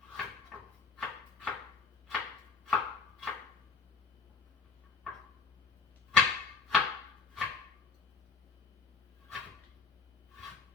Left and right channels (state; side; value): quieter; right; 4.9 dB